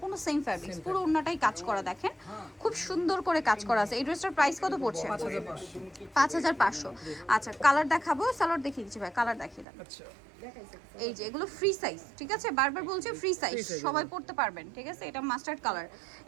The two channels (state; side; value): drops out; left; at 9.7 s